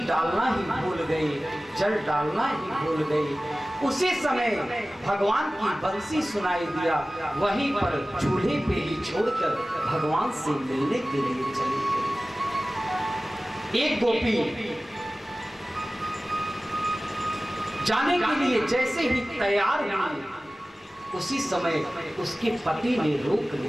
डालना ही भूल गई, जल डालना ही भूल गई। उसी समय भगवान की बंसी सुनाई दिया, वहीं पर चूल्हे पे ही छोड़कर भगवान से मिलने के लिए चली गई। एक गोपी जाने के लिए जैसे ही तैयार हुई, उसी समय उसके पति ने रोक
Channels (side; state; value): both; normal; correlation 0.97